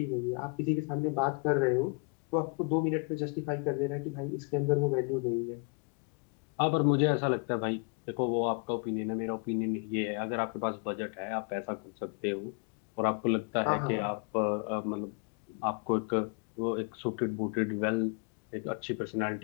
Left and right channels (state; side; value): quieter; right; 31.9 dB